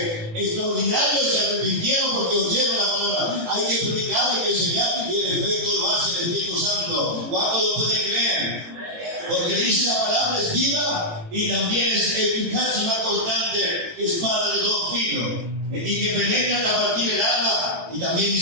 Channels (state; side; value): late; left; 18 ms